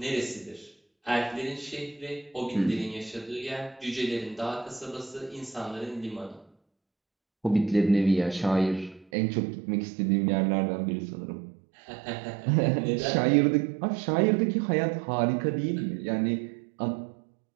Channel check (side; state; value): left; drops out; at 9.1 s